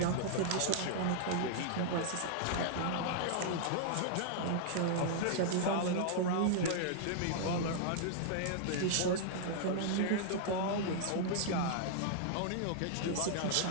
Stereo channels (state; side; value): different; both; correlation -0.01